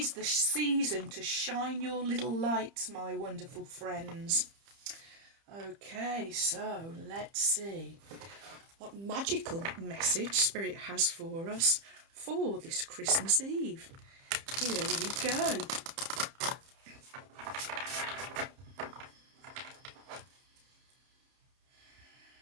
the season to shine your little lights, my wonderful friends. Okay, so let's see what magical message Spirit has for us for this Christmas Eve. Here we go.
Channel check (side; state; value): left; late; 30 ms